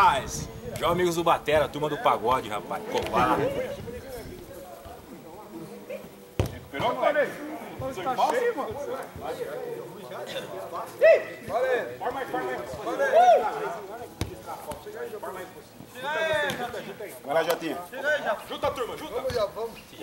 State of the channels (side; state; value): both; identical; correlation 1.00